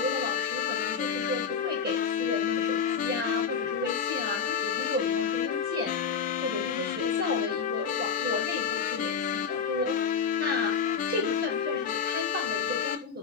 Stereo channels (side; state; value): right; quieter; 6.3 dB